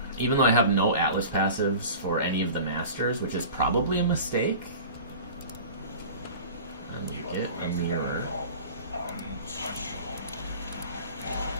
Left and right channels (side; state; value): both; inverted; correlation -0.39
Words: Even though I have no Atlas passives for any of the Masters, which is probably a mistake. Get a mirror.